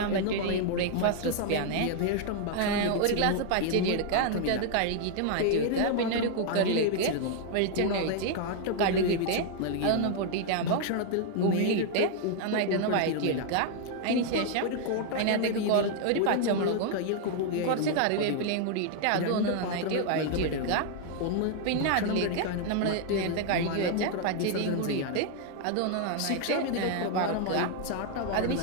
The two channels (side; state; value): both; different; correlation 0.00